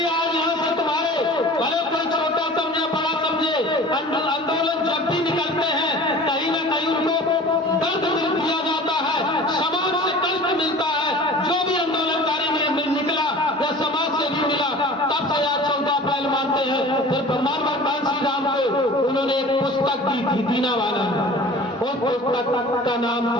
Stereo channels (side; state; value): both; normal; correlation 0.42